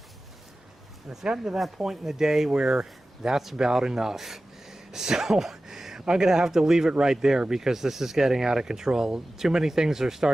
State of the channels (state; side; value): normal; both; correlation 0.95